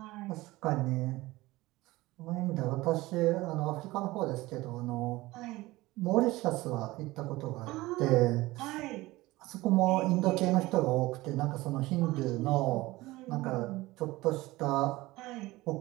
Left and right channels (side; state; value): left; quieter; 19.4 dB